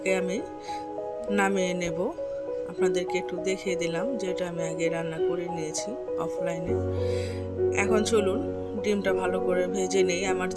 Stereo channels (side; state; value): both; identical; correlation 1.00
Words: আমি নামিয়ে নেব। আপনাদেরকে একটু দেখিয়ে দিলাম যে এটা আমি আগে রান্না করে নিয়েছি অফলাইনে। এখন চলুন ডিমটা ভালো করে ভেজে নেই। আমার